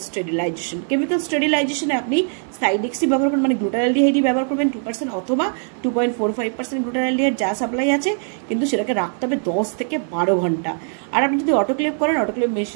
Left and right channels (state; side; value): silent; left; 57 dB below the other